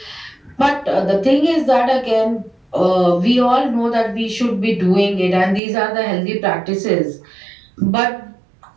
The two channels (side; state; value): left; drops out; at 5.6 s